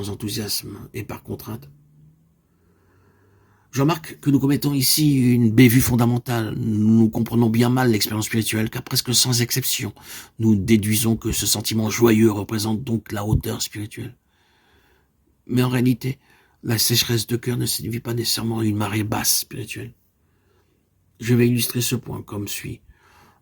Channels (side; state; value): both; identical; correlation 1.00